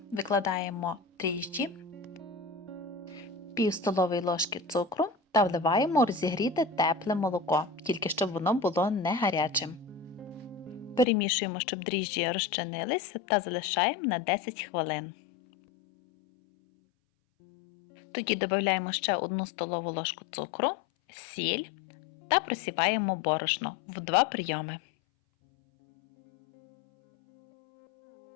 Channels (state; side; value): drops out; right; at 11.1 s